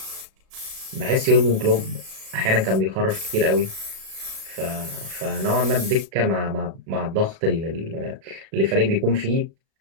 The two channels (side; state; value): left; late; 37 ms